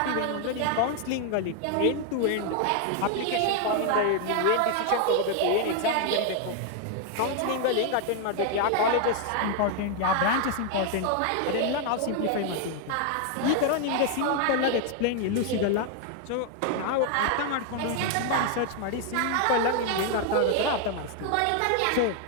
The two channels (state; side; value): different; both; correlation 0.00